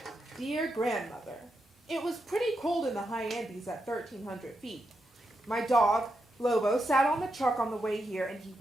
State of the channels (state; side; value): normal; both; correlation 0.85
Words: Dear grandmother, it was pretty cold in the high Andes at 1,300 feet. My dog, Lobo, sat on the truck on the way here and he